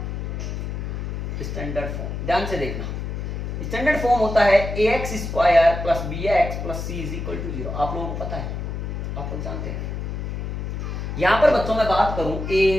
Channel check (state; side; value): noise; left; hum, 4 dB below the sound